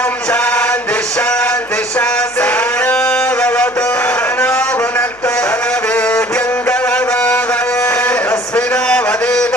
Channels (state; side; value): noise; right; hum, 29 dB below the sound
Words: శాంతి శాంతి శాంతి భవతు నో భునక్తు వేద్యం కలవావహే అస్మినో